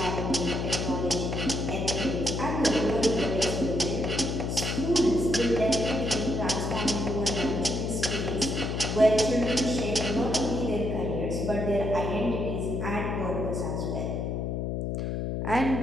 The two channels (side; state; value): left; noise; hum, 1 dB below the sound